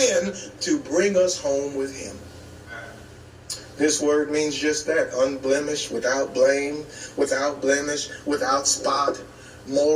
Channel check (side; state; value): both; identical; correlation 1.00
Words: to bring us home with Him. This word means just that, unblemished, without blame, without blemish, without spot,